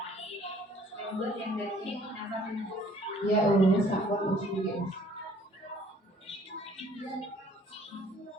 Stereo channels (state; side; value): normal; both; correlation 0.58